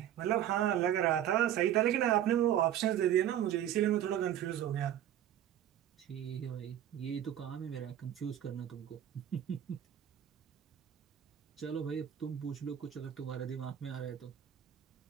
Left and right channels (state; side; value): quieter; left; 11.0 dB